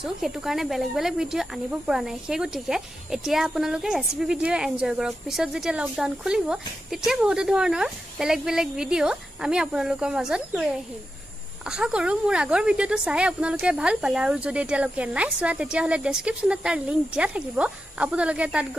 হেতু কাৰণে বেলেগ বেলেগ ভিডিও আনিব পৰা নাই। সেই গতিকে এতিয়া আপোনালোকে ৰেচিপি ভিডিও এনজয় কৰক। পিছত যেতিয়া লকডাউন খুলিব তেতিয়া বহুত ধৰণৰ বেলেগ বেলেগ ভিডিও আমি আপোনালোকৰ মাজত লৈ আহিম। আশা কৰো মোৰ আগৰ ভিডিওটো চাই আপোনালোকে ভাল পালে আৰু যদি এতিয়ালৈকে নাই চোৱা তেতিয়া হলে ডেসক্ৰিপচনত তাৰ লিংক দিয়া থাকিব, আপোনালোকে তাত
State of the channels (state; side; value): normal; both; correlation 0.90